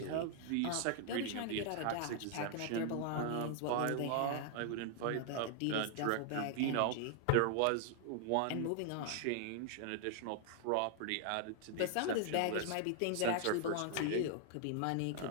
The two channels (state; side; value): different; both; correlation 0.00